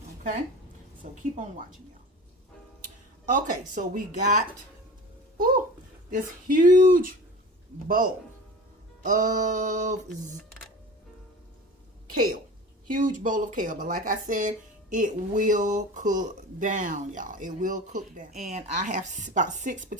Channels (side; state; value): both; normal; correlation 0.36